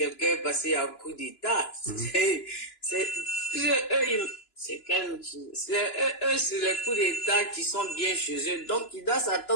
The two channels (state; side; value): late; right; 2.9 ms